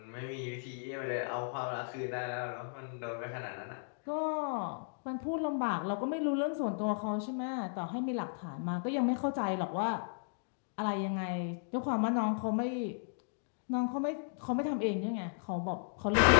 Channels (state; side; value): silent; right; digital silence